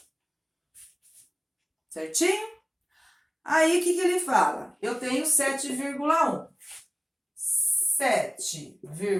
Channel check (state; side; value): identical; both; correlation 1.00